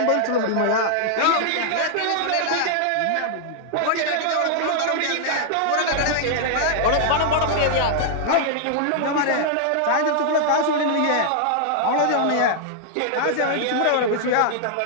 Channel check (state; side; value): different; both; correlation -0.01